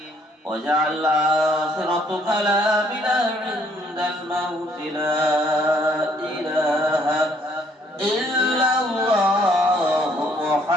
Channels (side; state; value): both; normal; correlation 0.65